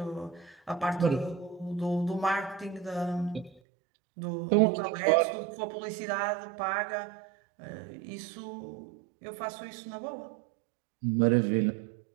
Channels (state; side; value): drops out; left; at 3.6 s